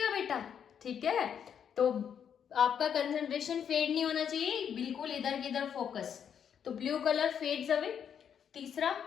बेटा, ठीक है। तो आपका कंसंट्रेशन फेड नहीं होना चाहिए, बिल्कुल इधर की इधर फोकस। तो ब्लू कलर फेड्स अवे। तीसरा,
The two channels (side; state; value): right; quieter; 8.2 dB